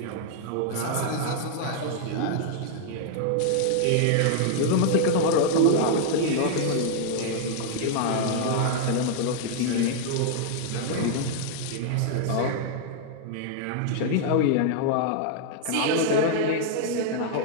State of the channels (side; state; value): both; different; correlation -0.01